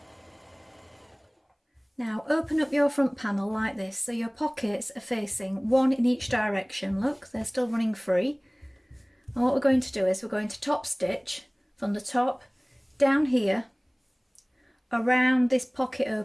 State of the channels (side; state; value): both; identical; correlation 1.00